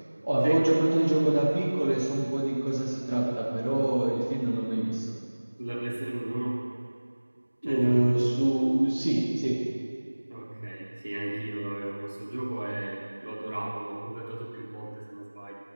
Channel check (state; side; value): inverted; both; correlation -1.00